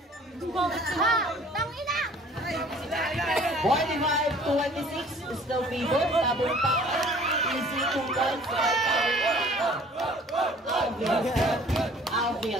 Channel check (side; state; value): both; normal; correlation 0.52